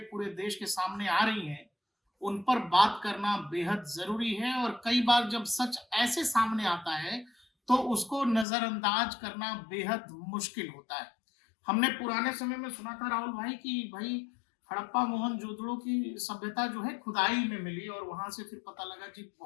देश के सामने आ रही हैं, उन पर बात करना बेहद ज़रूरी है और कई बार जब सच ऐसे सामने आता है, तो उसको नज़रअंदाज करना बेहद मुश्किल होता है। हमने पुराने समय में सुना था राहुल भाई कि भई हड़प्पा मोहनजोदड़ो की सभ्यता जो है खुदाई में मिली और वहाँ से फिर पता लगा कि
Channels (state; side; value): drops out; right; at 8.5 s